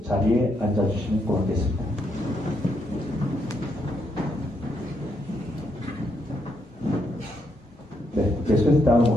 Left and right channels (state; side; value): normal; both; correlation 0.77